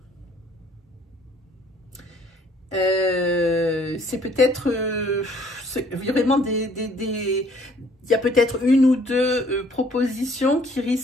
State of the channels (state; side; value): normal; both; correlation 0.60